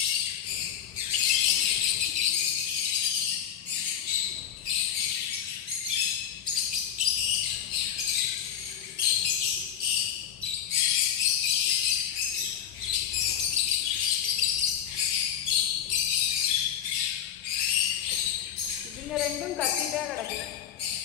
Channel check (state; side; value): quieter; right; 9.6 dB